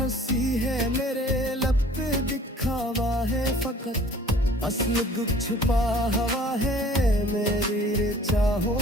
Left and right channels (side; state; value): both; normal; correlation 0.51